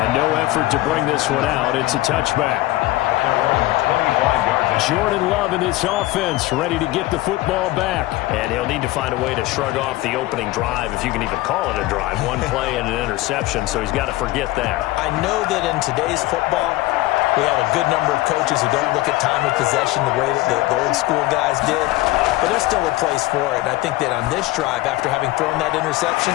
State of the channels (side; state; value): right; quieter; 18.2 dB